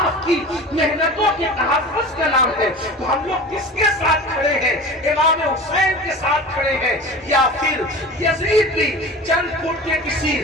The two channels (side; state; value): both; normal; correlation 0.35